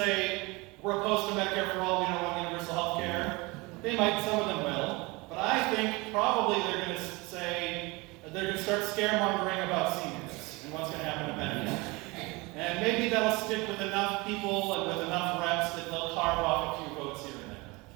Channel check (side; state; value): left; quieter; 24.9 dB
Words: we're opposed to Medicare for all, we don't want universal health care? They might, some of them will. But I think probably they're going to say, they're going to start scaremongering about seniors and what's going to happen to Medicare. And maybe that'll stick with enough people and with enough reps that they'll carve off a few votes here and there.